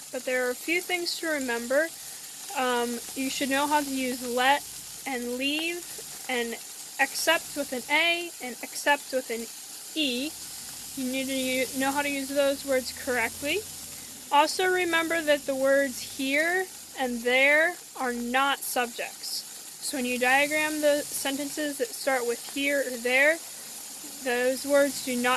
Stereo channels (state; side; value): identical; both; correlation 1.00